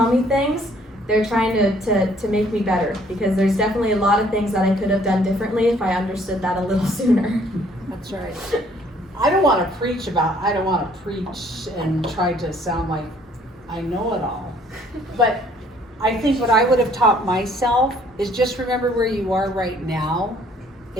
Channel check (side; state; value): both; normal; correlation 0.61